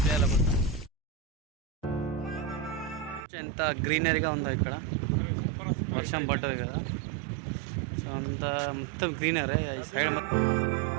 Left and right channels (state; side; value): drops out; left; at 3.2 s